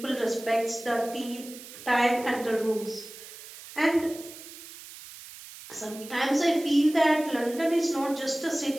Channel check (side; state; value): right; noise; hiss, 16 dB below the sound